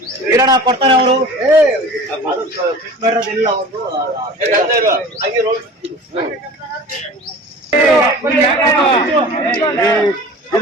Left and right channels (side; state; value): both; normal; correlation 0.40